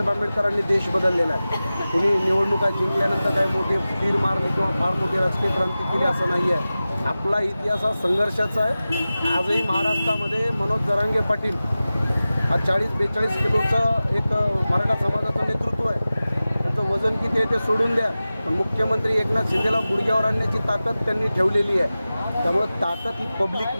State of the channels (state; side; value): inverted; both; correlation -0.96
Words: आंबेडकरांनी देश बदललेला आहे। कुणी निवडणुका जिंकल्यानंतर काय मोठे तीर मारले किंवा फार मोठी राजकीय क्रांती केली असं नाही आहे। आपला इतिहास हा संघर्षाचा आहे। आजही महाराष्ट्रामध्ये मनोज जरांगे पाटील हा 40-42 किलोचं एक मराठा समाजाचं नेतृत्व आहे। त्याचं वजन किती आहे ते सोडून द्या, पण मुख्यमंत्री एकनाथ शिंदेला गुडघ्यावर आणण्याची ताकद त्यांनी ठेवलेली आहे। त्यामुळं ताकद ही